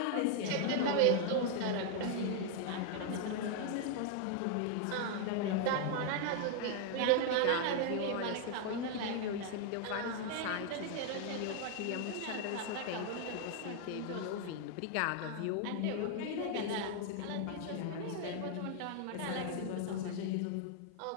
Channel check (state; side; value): different; both; correlation 0.00